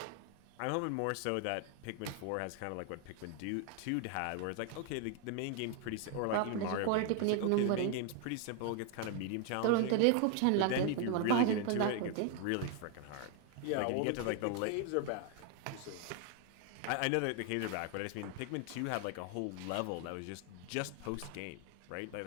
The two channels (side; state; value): both; different; correlation 0.01